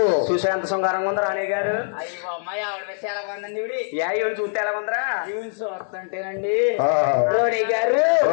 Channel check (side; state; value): right; silent; digital silence